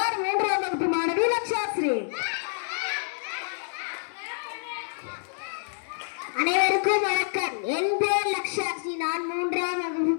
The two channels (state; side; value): silent; right; 60 dB below the other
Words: 3ஆம் வகுப்பு மாணவி லக்ஷாஸ்ரீ. அனைவருக்கும் வணக்கம். என் பெயர் லக்ஷாஸ்ரீ. நான் 3ஆம் வகுப்பு